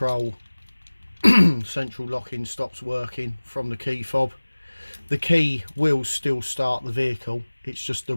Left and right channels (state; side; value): inverted; both; correlation -1.00